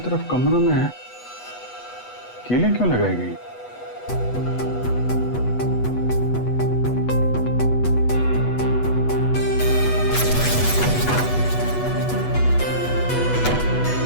कमरों में है, कीलें क्यों लगाई गई?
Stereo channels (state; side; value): late; right; 8.1 ms